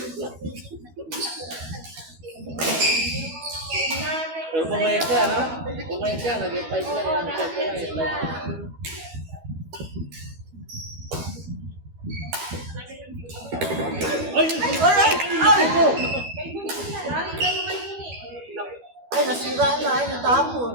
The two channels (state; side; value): late; left; 12 ms